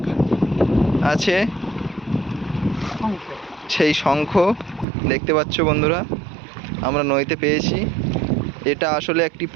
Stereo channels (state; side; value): drops out; left; at 4.9 s